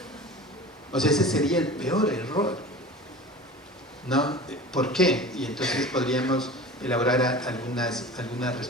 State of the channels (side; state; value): both; normal; correlation 0.37